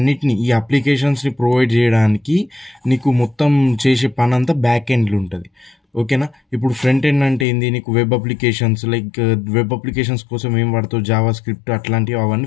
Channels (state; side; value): drops out; right; at 7.5 s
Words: ఈ అప్లికేషన్స్ని ప్రొవైడ్ చేయడానికి నీకు మొత్తం చేసే పని అంతా బ్యాక్ ఎండ్లో ఉంటుంది, ఓకేనా? ఇప్పుడు ఫ్రంట్ ఎండ్ అంటే ఏంది, నీకు వెబ్ అప్లికేషన్స్, వెబ్ అప్లికేషన్స్ కోసం ఏం వాడతావు, జావా స్క్రిప్ట్ అట్లాంటివి, అవన్నీ